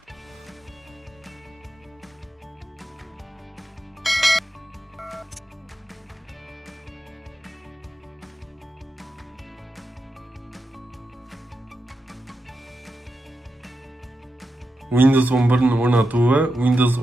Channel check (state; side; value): normal; both; correlation 0.88